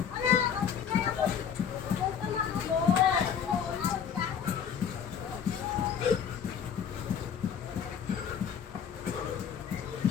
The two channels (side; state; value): right; quieter; 7.8 dB